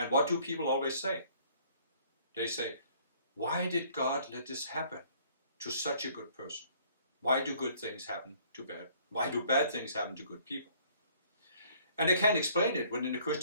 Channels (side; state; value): both; inverted; correlation -0.59